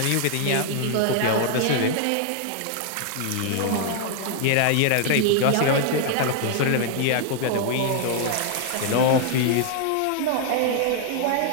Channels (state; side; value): different; both; correlation 0.00